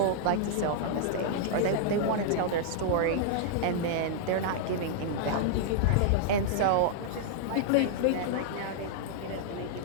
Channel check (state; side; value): different; both; correlation -0.01